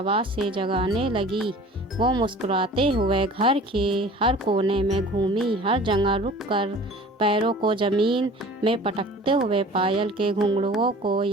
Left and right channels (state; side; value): normal; both; correlation 0.44